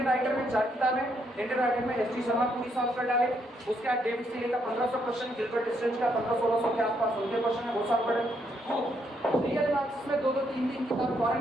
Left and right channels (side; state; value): both; normal; correlation 0.74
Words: राइटर में 4 किताबें, इंडियन राइटर में एस टी शर्मा पूरी सॉल्व कर डाले। उसके बाद डेविड सीले का 1500 क्वेश्चन, गिलबर्ट स्ट्रेंज का 1500-1600 के आसपास उनके क्वेश्चन है, वो सॉल्व कर डाले। रियल एनालिसिस में 2-2, 3-3 किताब